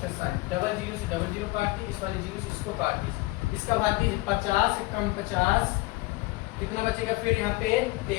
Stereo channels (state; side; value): quieter; right; 21.3 dB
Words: डबल जीरो से डबल जीरो काट दी, इस वाले जीरो से इसको काट दी, इसका भाग दीजिए 50 से कम 50 कितना बचेगा फिर यहाँ पे